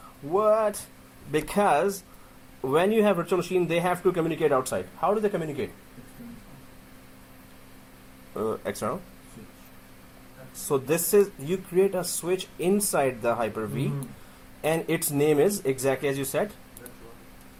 what? Because when you have virtual machine, they have to communicate outside. How do they communicate? External. So this is, you create a switch inside the Hyper-V, and its name is exactly as you said.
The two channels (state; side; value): identical; both; correlation 1.00